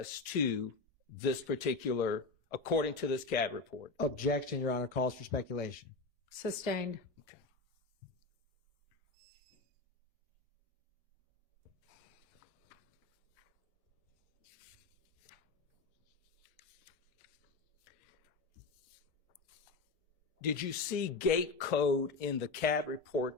to this particular, according to this CAD report. Objection, Your Honor. Calls for speculation. Sustained. Okay. Did you see gate code in the CAD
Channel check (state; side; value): quieter; right; 3.9 dB